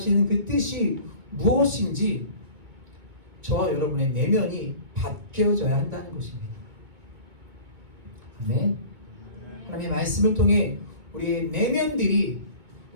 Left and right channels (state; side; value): late; left; 2.2 ms